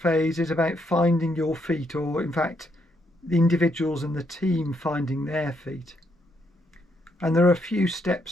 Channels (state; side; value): normal; both; correlation 0.75